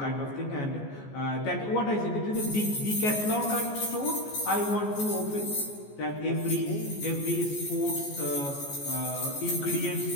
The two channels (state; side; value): late; right; 14 ms